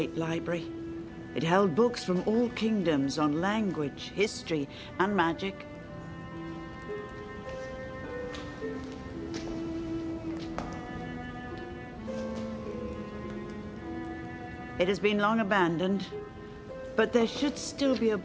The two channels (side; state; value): both; identical; correlation 1.00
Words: library. It held books from all kingdoms on language, history, and magic. It has been long abandoned, but there should still be a